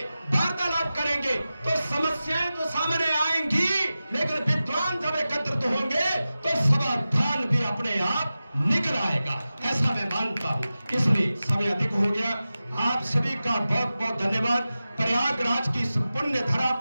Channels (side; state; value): both; inverted; correlation -0.95